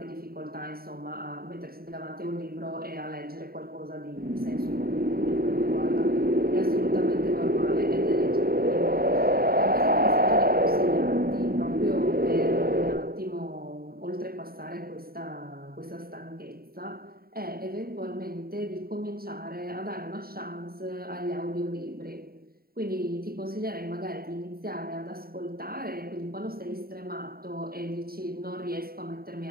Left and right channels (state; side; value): late; left; 0.43 ms